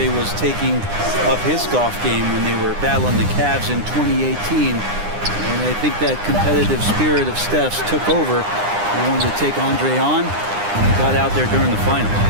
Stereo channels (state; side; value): late; left; 9.8 ms